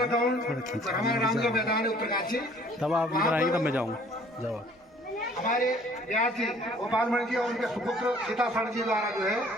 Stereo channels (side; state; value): both; normal; correlation 0.56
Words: ग्राउंड हमारा रामगढ़ मैदान है उत्तरकाशी, तब आप इधर आएंगे तब मैं जाऊँगा। जाओ हमारे व्यास जी गोपाल मणि जी और उनके सुपुत्र सीतासरण जी द्वारा जो है